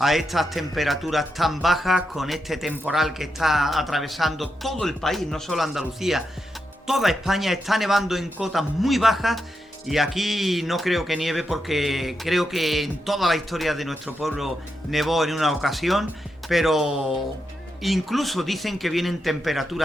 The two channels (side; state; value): both; normal; correlation 0.85